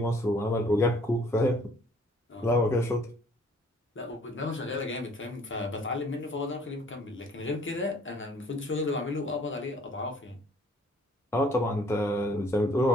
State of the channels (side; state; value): both; normal; correlation 0.58